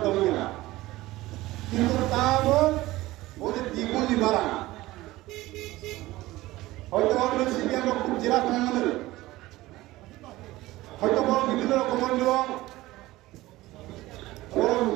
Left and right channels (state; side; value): quieter; left; 18.0 dB